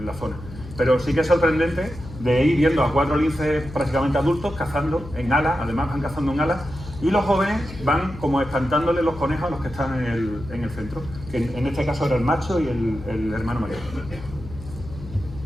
la zona. Pero sí que es sorprendente de ir viendo a 4 linces prácticamente adultos cazando en alas, además van cazando en alas, y los jóvenes van como espantándole los conejos a los que están en el centro, que en este caso era el macho y el hermano mayor.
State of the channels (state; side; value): noise; left; hum, 14 dB below the sound